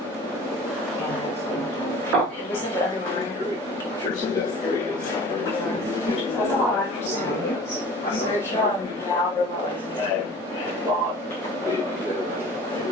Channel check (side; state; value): both; normal; correlation 0.43